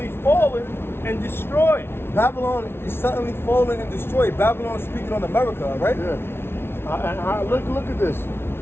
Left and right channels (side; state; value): right; late; 0.12 ms